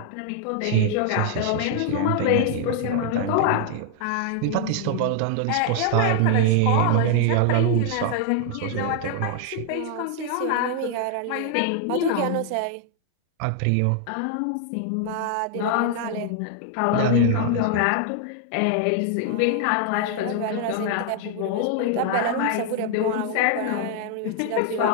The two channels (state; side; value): different; both; correlation 0.00